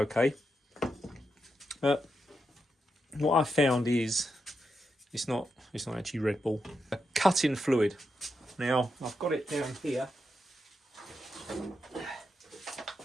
But what I found is it's not actually Red Bull. A cutting fluid. Now I've got it down here.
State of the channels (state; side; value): normal; both; correlation 0.85